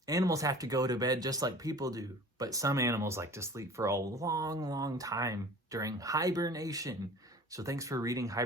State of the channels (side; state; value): both; normal; correlation 0.43